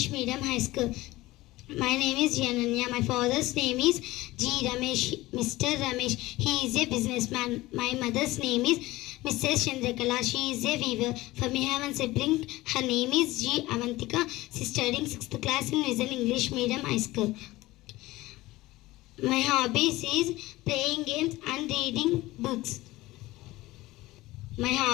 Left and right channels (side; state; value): right; quieter; 18.6 dB